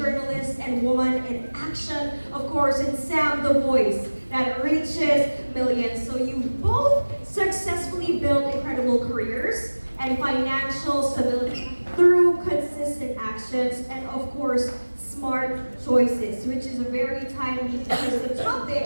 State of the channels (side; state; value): both; inverted; correlation -1.00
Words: and woman in action, of course, and Sam, the voice that reaches millions. So you both successfully built incredible careers and financial stability through consistent actions and, of course, smart choices, which is very timely because the